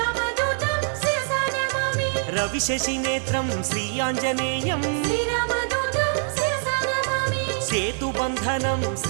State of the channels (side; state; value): left; silent; 59 dB below the other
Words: శిరసా నమామి రవిశశి నేత్రం శ్రీ ఆంజనేయం శ్రీరామదూతం శిరసా నమామి సేతుబంధనం